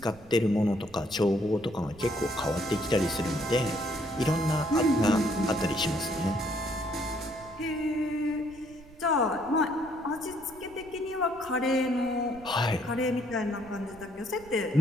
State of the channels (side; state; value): right; noise; rumble, 22 dB below the sound